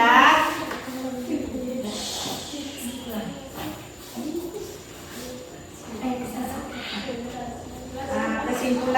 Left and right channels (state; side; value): identical; both; correlation 1.00